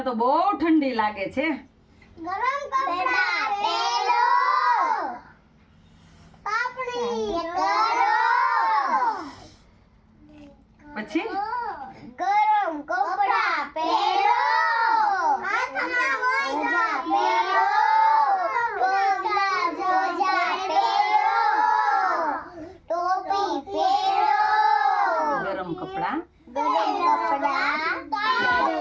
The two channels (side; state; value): both; identical; correlation 1.00